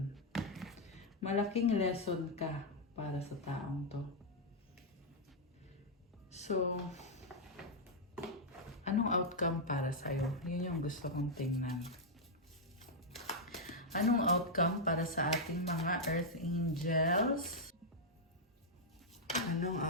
Malaking lesson ka para sa taong to. So, anong outcome para sa'yo? Yun yung gusto kong tingnan. Anong outcome para sa ating mga Earth Angels? Anong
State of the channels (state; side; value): normal; both; correlation -0.04